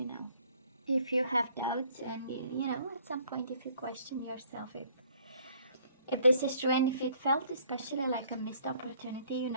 now. If you have doubts, and at some point if you question yourself if this is true, and if it felt especially like a missed opportunity, it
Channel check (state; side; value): inverted; both; correlation -0.60